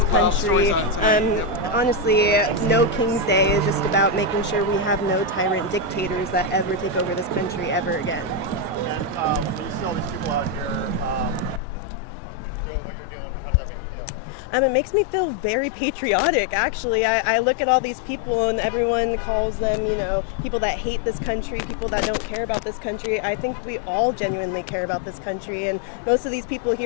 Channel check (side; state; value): right; drops out; at 11.6 s